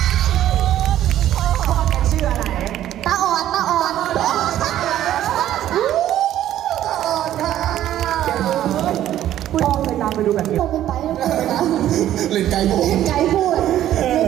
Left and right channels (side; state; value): left; quieter; 12.3 dB